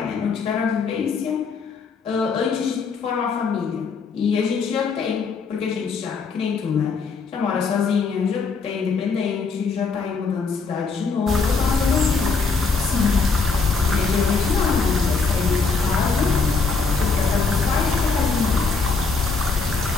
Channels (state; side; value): quieter; right; 4.7 dB